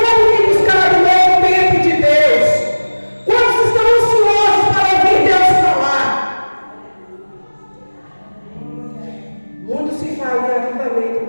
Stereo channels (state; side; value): inverted; both; correlation -1.00